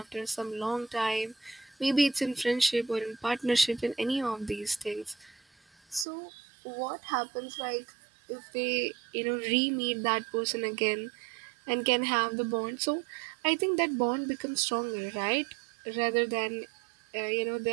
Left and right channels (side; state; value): left; drops out; at 6.1 s